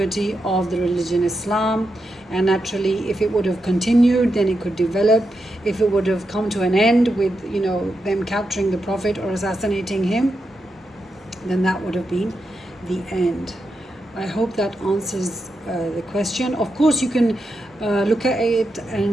of the religion Islam. And naturally, if it would have continued, then it could develop. If it would have come to an end with them capturing the Prophet or assassinating him, then that would have been the end. I hope that answers the question. Of course, you can look at it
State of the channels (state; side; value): normal; both; correlation 0.86